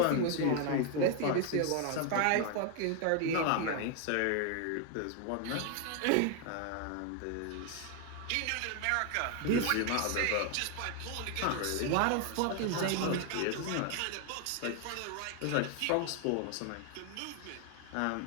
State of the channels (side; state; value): both; different; correlation 0.00